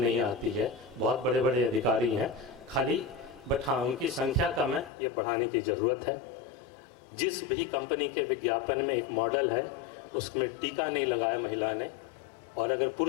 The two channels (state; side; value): drops out; right; at 4.9 s